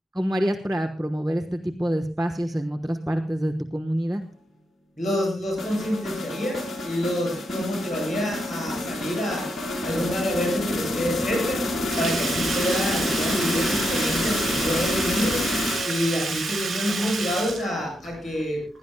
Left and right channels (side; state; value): both; normal; correlation 0.83